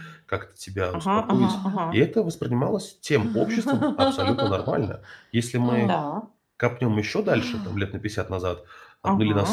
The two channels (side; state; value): both; identical; correlation 1.00